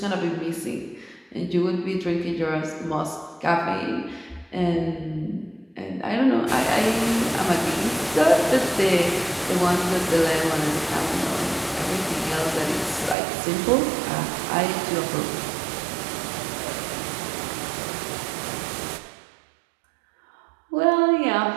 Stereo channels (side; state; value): left; drops out; at 13.2 s